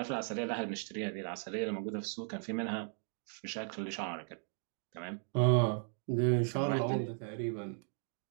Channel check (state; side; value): silent; left; 53 dB below the other